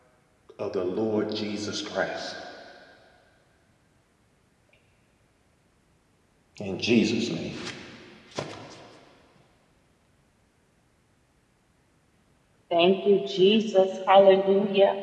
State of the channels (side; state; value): both; identical; correlation 1.00